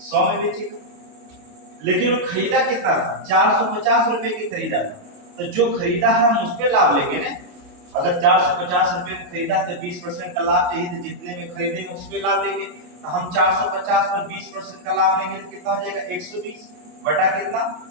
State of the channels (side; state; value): left; late; 28 ms